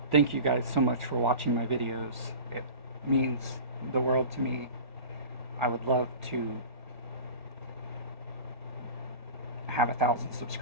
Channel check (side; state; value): left; late; 1.6 ms